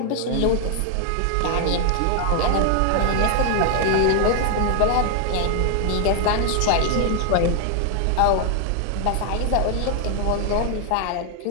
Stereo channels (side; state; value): both; different; correlation 0.00